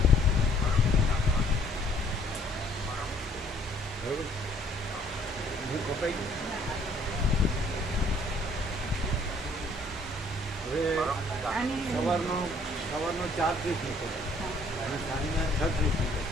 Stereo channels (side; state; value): both; normal; correlation 0.61